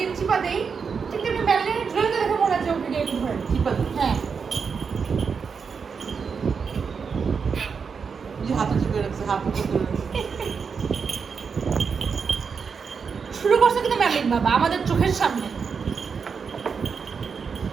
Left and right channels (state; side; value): quieter; left; 5.9 dB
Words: চিপা দেই, ঠিক তেমনি ম্যারিনের ড্রয়িংকে দেখে মনে হচ্ছে ওকে গিয়ে একটু ধরে। চিপা দিই। হ্যাঁ যে হাতে চিপে রাখছে, হাত উপর করে রাখছে। শুরু করছে কিন্তু ম্যারিন বাবা আমাদের চোখের সামনে।